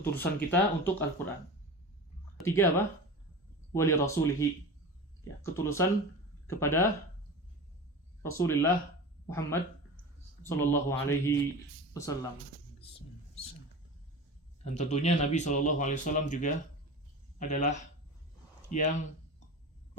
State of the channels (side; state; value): both; normal; correlation 0.30